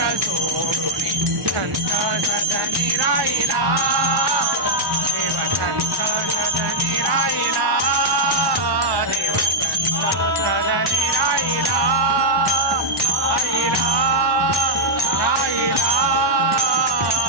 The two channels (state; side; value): late; left; 1.1 ms